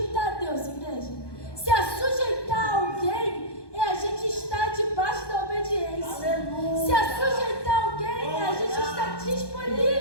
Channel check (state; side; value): late; right; 1.2 ms